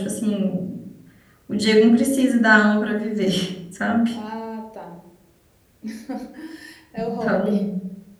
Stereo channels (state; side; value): identical; both; correlation 1.00